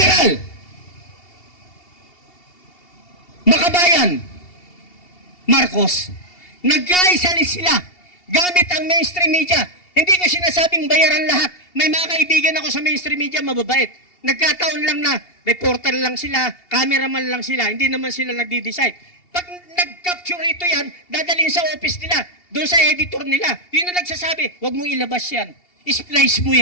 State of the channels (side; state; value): right; late; 2.8 ms